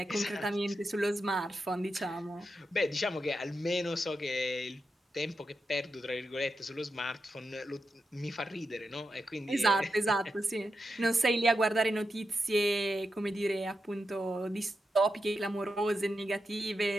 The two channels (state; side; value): normal; both; correlation 0.87